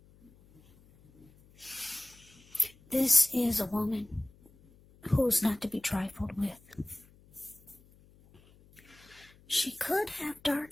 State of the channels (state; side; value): noise; left; hum, 27 dB below the sound